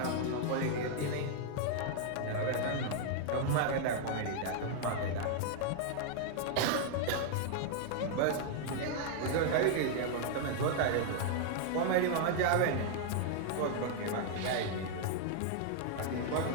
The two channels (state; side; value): different; both; correlation 0.00